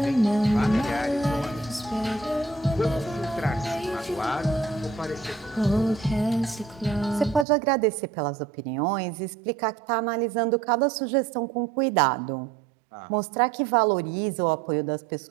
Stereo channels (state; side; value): drops out; left; at 7.5 s